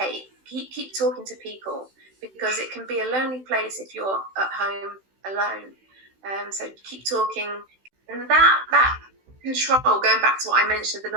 Keep talking to people, because it can be a lonely place if you're at home alone. So keep talking. And that control, going back to what I mentioned, the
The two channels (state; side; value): late; left; 16 ms